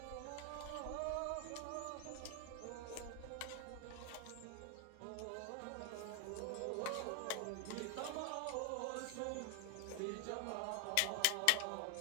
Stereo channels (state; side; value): different; both; correlation 0.00